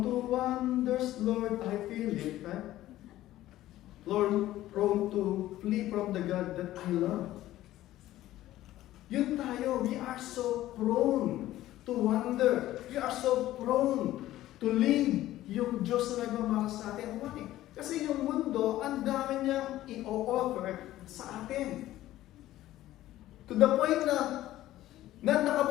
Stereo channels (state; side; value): quieter; right; 14.7 dB